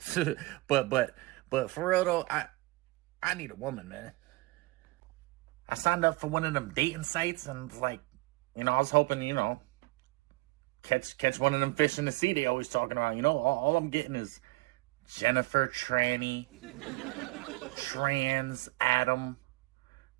but for real though, I need a woman, man. I signed up for one of them dating sites and like, I was hoping, catch one of them fish in the sea they always talking about. All I'm getting is Jennifer, tranny, trans Adam,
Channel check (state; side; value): quieter; left; 22.5 dB